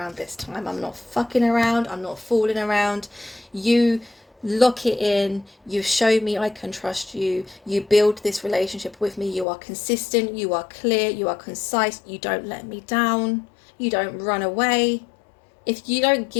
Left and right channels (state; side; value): drops out; right; at 9.5 s